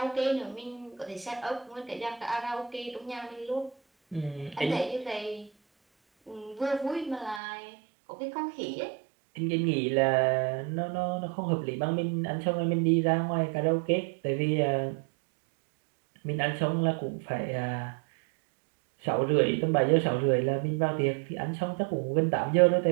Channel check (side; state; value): left; drops out; at 7.4 s